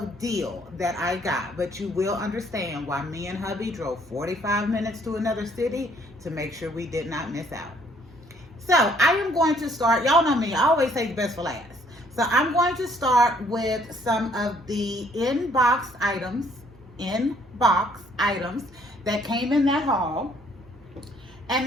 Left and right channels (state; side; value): normal; both; correlation 0.64